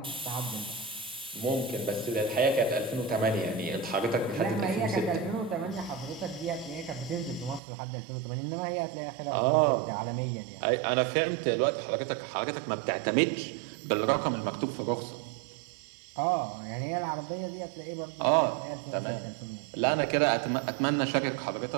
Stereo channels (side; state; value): left; drops out; at 7.6 s